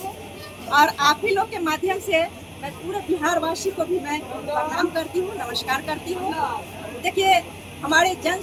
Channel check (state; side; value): identical; both; correlation 1.00